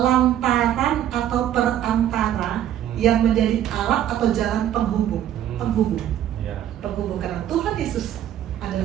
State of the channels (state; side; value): quieter; left; 11.2 dB